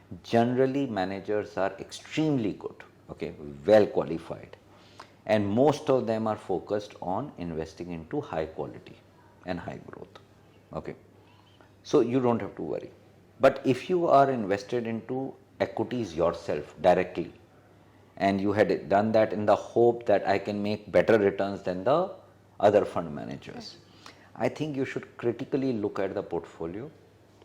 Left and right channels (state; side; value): identical; both; correlation 1.00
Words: Generally, managers are extremely good, okay, well qualified, and most of them are focused on investing into high quality and high growth, okay. So you don't have to worry. But if you are invested into equities yourself directly, and you had done that in the hope that I can make better returns than the other fund managers, I think you should critically look at the portfolio.